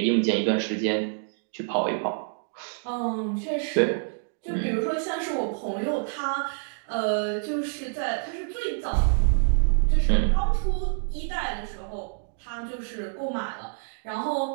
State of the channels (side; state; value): left; silent; 60 dB below the other